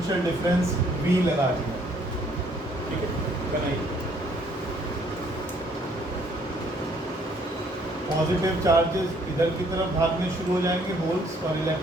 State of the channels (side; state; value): both; normal; correlation 0.64